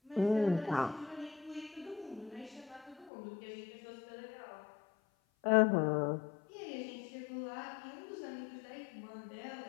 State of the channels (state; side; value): drops out; right; at 3.1 s